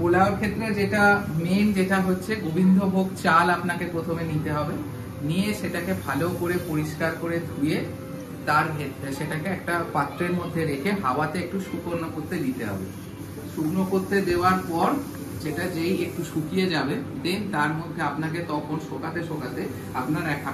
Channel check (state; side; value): identical; both; correlation 1.00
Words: ক্ষেত্রে যেটা মেন, যেটা হচ্ছে গোবিন্দভোগ চাল আপনাকে প্রথমে নিতে হবে। নিয়ে সেটাকে ভালো করে পরিষ্কার করে ধুয়ে তার সেটাকে একটা পাত্রের মধ্যে রেখে হাওয়াতে একটু শুকনো করতে দিতে হবে। শুকনো করতে দেওয়ার পর সেটা যেই একটু শুকিয়ে যাবে, দেন তার মধ্যে আপনাকে তখন শোকাতে শোকাতে আপনার